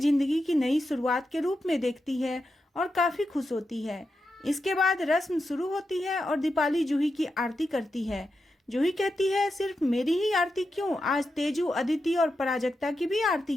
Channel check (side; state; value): both; normal; correlation 0.88